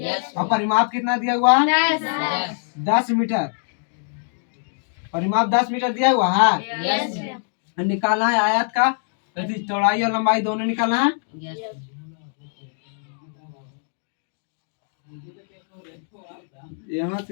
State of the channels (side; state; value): right; silent; digital silence